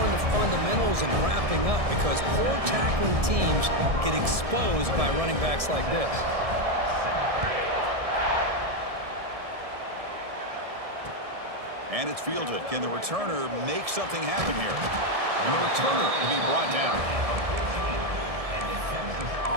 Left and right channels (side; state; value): left; late; 1.7 ms